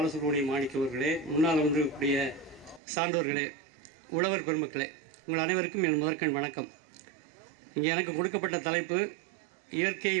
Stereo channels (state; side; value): drops out; left; at 2.8 s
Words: மாணிக்க அவர்களே, முன்னால் வந்திருக்கக்கூடிய சான்றோர்களே, உழவர் பெருமக்களே, உங்கள் அனைவருக்கும் என் முதற்கண் வணக்கம். இங்கே எனக்கு கொடுக்கப்பட்ட தலைப்பு இயற்கை